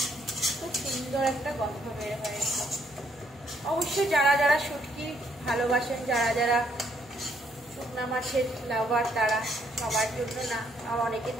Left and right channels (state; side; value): noise; right; hum, 26 dB below the sound